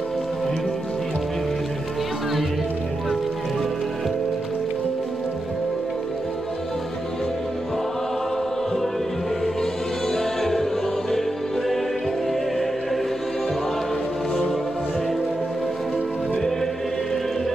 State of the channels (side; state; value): both; normal; correlation 0.88